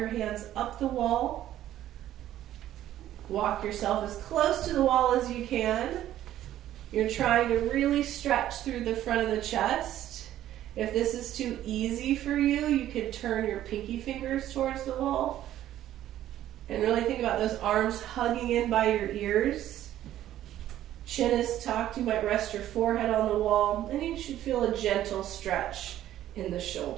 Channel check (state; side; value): quieter; left; 12.6 dB